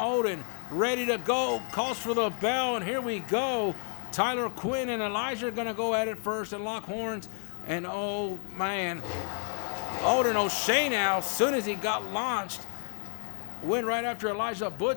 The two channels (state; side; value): quieter; right; 38.0 dB